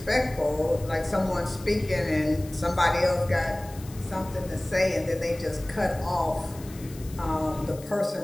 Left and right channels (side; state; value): left; noise; hiss, 19 dB below the sound